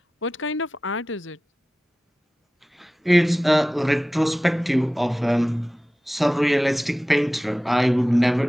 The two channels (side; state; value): both; normal; correlation 0.96